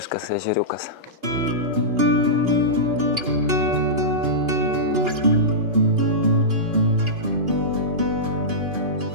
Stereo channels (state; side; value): late; left; 2.8 ms